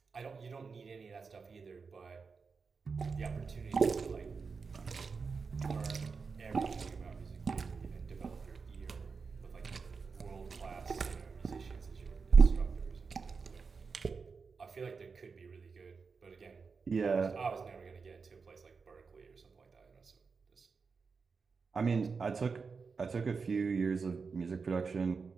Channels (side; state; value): left; quieter; 5.0 dB